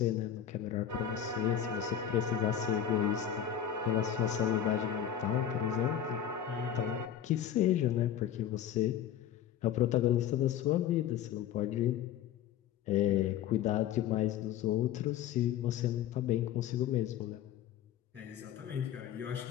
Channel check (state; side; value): quieter; right; 9.8 dB